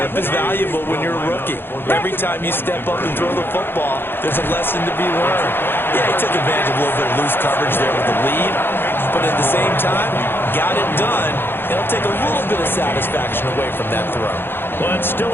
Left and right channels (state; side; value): late; right; 0.10 ms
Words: is valuable when you're a rookie. Every time you step up and throw the football, there's a lesson to be learned. Yeah, he took advantage of a little bit of loose coverage there with the lead. But at the same time, got it done. It'll take a little bit of satisfaction away from that throw. Well, it's still